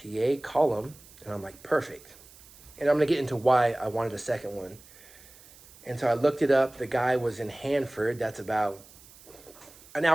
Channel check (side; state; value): right; noise; hiss, 23 dB below the sound